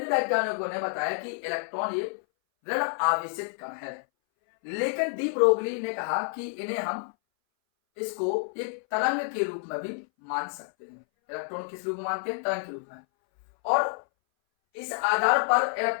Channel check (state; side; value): silent; right; 59 dB below the other